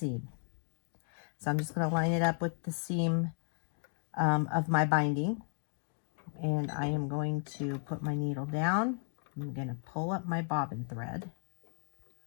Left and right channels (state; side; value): silent; right; 55 dB below the other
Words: So I'm just going to line it up with the seam of my binding, and I am going to put my needle down. I'm going to pull up my bobbin thread.